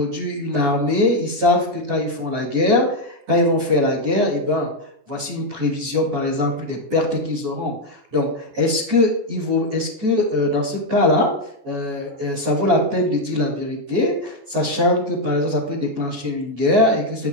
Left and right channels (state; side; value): late; left; 14 ms